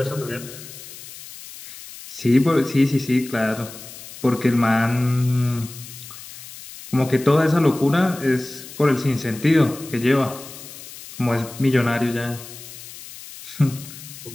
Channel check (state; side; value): noise; left; hiss, 15 dB below the sound